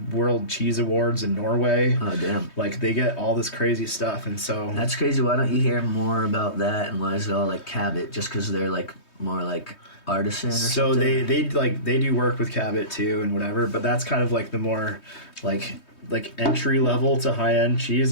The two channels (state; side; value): late; right; 3.2 ms